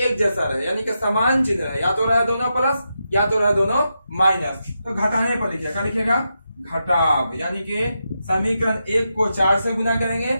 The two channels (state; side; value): inverted; both; correlation -0.86